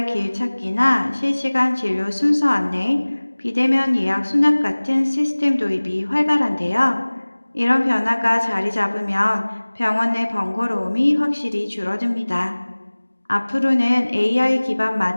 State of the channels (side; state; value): both; inverted; correlation -1.00